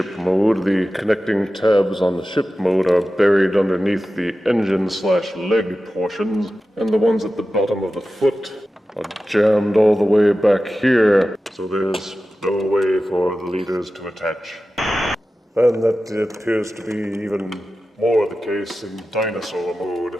Mode. The connecting tabs on the ship mode are buried underneath the engine/leg portions, and the ones at the bottom of the foot are jammed all the way back here, so there's no way for the leaders to attach. And that appears to be even more the case in Dinosaur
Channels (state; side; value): normal; both; correlation 0.94